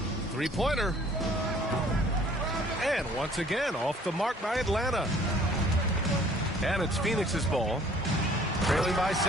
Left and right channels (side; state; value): both; normal; correlation 0.56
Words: 3-pointer. And once again, off the mark by Atlanta. And it's Phoenix's ball. Trailing by